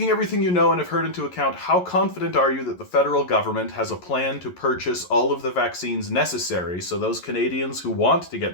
everything you know and have heard into account, how confident are you that the federal government has a plan to purchase all of the vaccines necessary so those Canadians who want to get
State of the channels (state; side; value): late; right; 11 ms